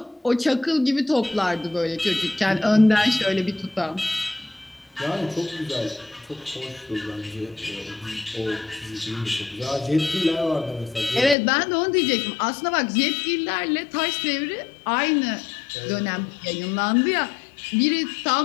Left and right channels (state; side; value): drops out; right; at 11.4 s